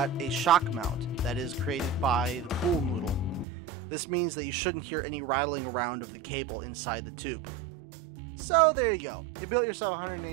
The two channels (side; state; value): left; drops out; at 3.5 s